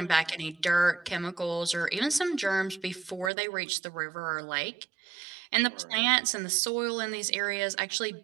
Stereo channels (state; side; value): drops out; left; at 3.3 s